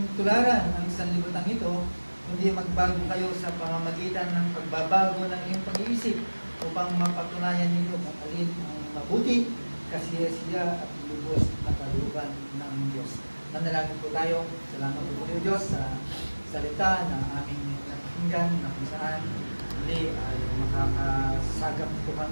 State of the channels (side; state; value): both; inverted; correlation -1.00